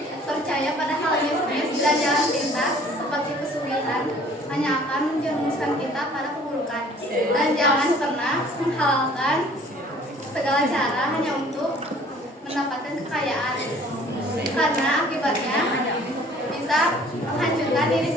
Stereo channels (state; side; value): normal; both; correlation 0.53